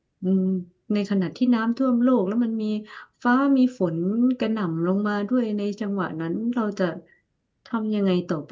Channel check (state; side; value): identical; both; correlation 1.00